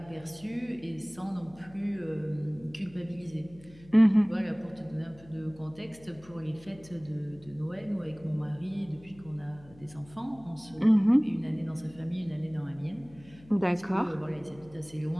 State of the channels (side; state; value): left; noise; hum, 23 dB below the sound